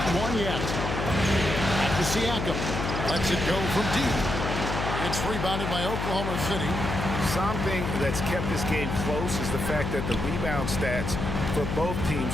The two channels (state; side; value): noise; left; hum, 3 dB below the sound